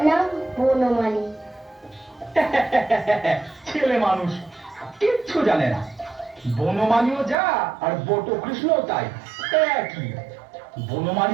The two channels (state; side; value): drops out; left; at 7.4 s